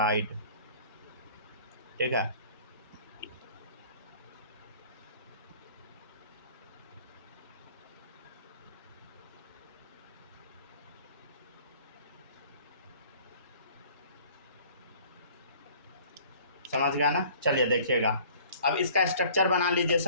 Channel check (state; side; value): inverted; both; correlation -0.52